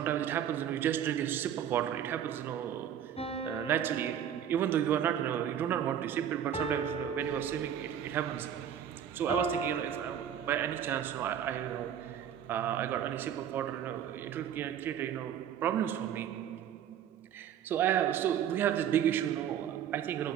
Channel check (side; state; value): left; quieter; 9.4 dB